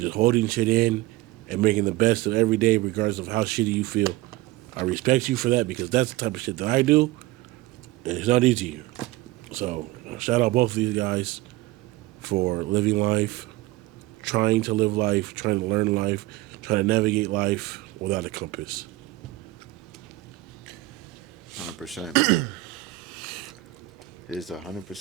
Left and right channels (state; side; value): quieter; left; 18.3 dB